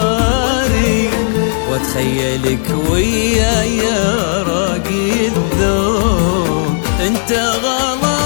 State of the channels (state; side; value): silent; right; digital silence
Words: واتخيلك وياي يا راقي الذوق. انت